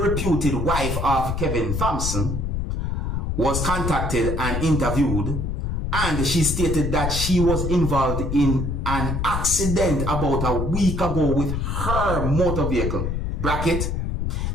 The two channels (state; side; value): noise; left; rumble, 1 dB below the sound